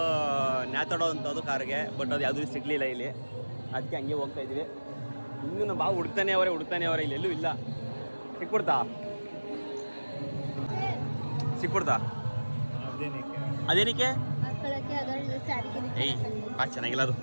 ನ್ಯಾತಾಡೋ ಅಂಥದ್ದು ಕಾರ್ಗೆ. ಬಟ್ ಅದು ಯಾವುದೂ ಸಿಗಲಿಲ್ಲ ಇಲ್ಲಿ, ಅದಕ್ಕೆ ಹಂಗೆ ಹೋಗ್ತಾ ಇದ್ವಿ. ಇನ್ನೂ ನಮ್ಮ ಬಾವು ಹುಡುಕ್ತಾನೆ ಅವರೇ, ಇಲ್ಲೆಲ್ಲೂ ಇಲ್ಲ. ಸಿಕ್ಬಿಡ್ತಾ ಅದೇನಕ್ಕೆ? ಏಯ್ ಚೆನ್ನಾಗಿಲ್ಲ ಅದು,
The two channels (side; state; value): both; inverted; correlation -1.00